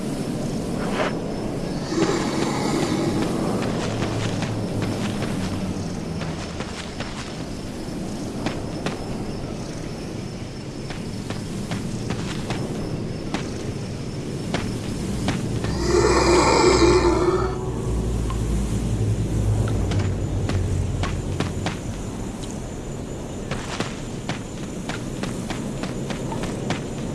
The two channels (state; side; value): identical; both; correlation 1.00